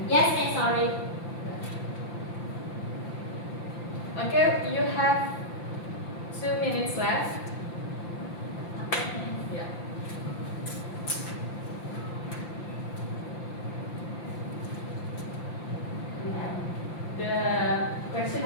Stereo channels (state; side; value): late; right; 5.8 ms